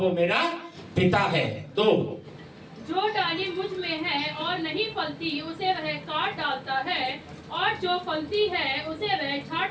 मेरा पिता है। तो जो डाली मुझ में है और नहीं फलती उसे वह काट डालता है, और जो फलती है उसे वह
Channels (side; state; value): both; identical; correlation 1.00